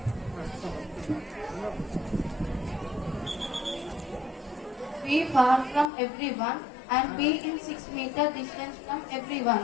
Be far from everyone and be in 6-meter distance from everyone,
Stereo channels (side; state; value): right; drops out; at 5.9 s